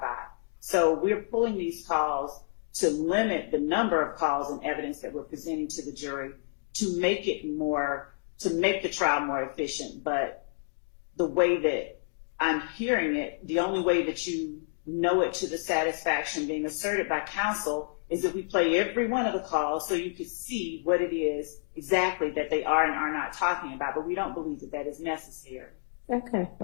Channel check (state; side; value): silent; right; digital silence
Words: So we're pulling these calls to limit the number of calls and evidence that we're presenting to the jury to make the trial more efficient. But the way that I'm hearing it, the only way that you know it to the satisfaction being asserted by counsel is if we play every one of the calls so you could see what it is exactly that they are and are not talking about. But we don't believe that that is necessary. Okay.